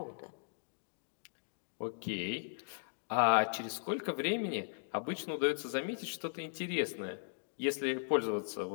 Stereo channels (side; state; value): right; silent; digital silence